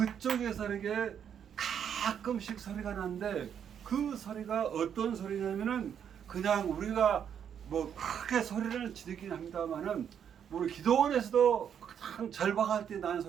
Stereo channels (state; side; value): quieter; left; 8.4 dB